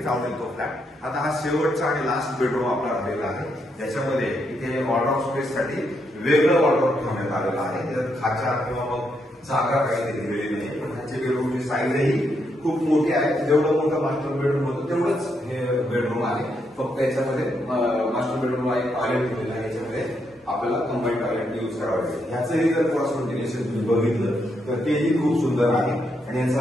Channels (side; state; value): both; normal; correlation 0.79